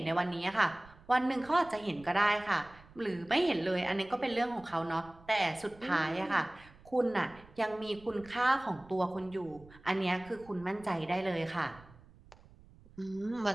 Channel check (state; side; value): noise; right; rumble, 23 dB below the sound